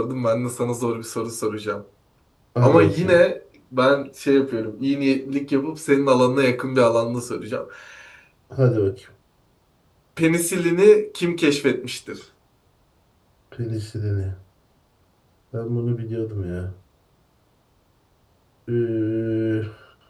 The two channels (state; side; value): identical; both; correlation 1.00